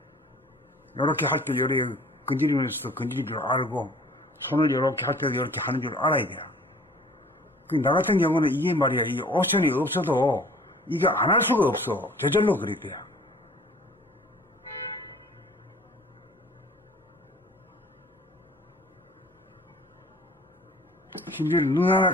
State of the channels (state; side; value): normal; both; correlation 0.50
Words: 이렇게 할 때 요래 건드리면서도 건드릴 줄 알고 손을 이렇게 할 때도 이렇게 하는 줄 알아야 돼. 나 같은 경우는 이게 말이야 이 옵션이 없어도 이게 안 할 수가 없어. 저절로 그랬대요. 심지어 눈 하나